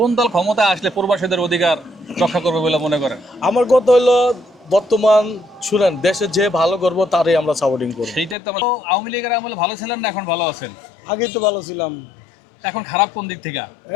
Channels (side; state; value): right; drops out; at 8.3 s